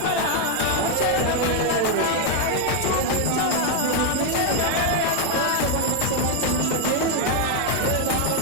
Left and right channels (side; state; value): both; different; correlation 0.00